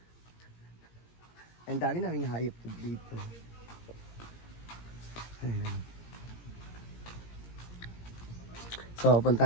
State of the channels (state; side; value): late; right; 17 ms